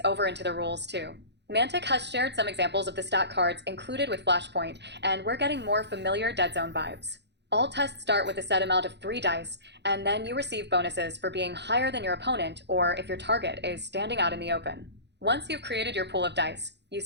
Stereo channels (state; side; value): late; left; 0.50 ms